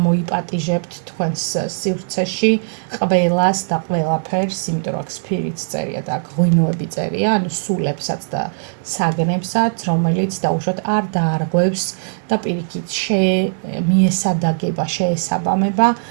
თქვენს სივრცეში ყველას და ყველაფერს, იმიტომ რომ აქ სფირიც წერია და აქ ღვინოები წერია, ანუ სულებსაც და საგნებსაც, რომელიც დაუშვათ არ დაარღვევს და პირიქით მიესადაგება, შეესაბამება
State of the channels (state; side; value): silent; left; digital silence